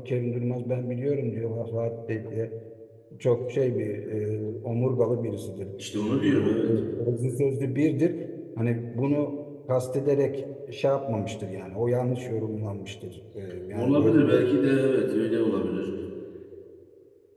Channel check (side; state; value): both; identical; correlation 1.00